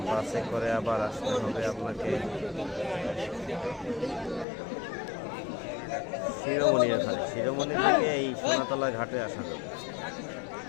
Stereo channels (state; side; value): drops out; right; at 4.5 s